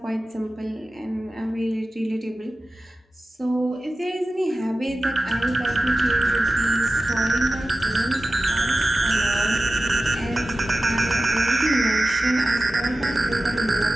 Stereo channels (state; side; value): normal; both; correlation 0.95